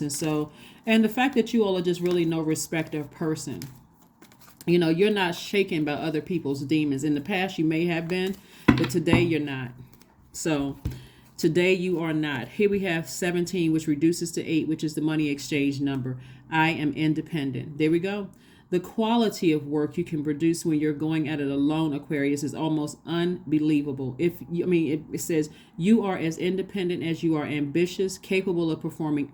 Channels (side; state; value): both; identical; correlation 1.00